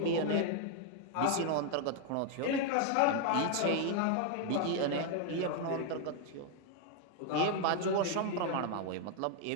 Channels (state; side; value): different; both; correlation 0.00